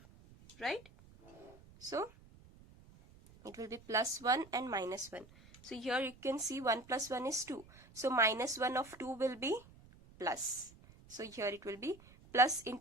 right? So it will be +1 and -1. So here you can see 1 plus 1 is 2. So -1 of 2 will be plus. So here it will be plus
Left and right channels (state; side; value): noise; right; rumble, 23 dB below the sound